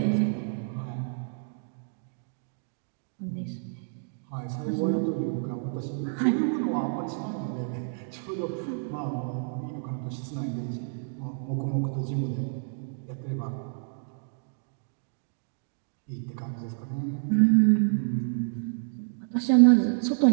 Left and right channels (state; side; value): silent; left; digital silence